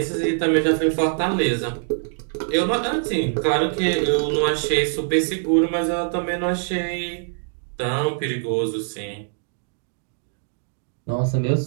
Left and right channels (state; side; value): silent; left; digital silence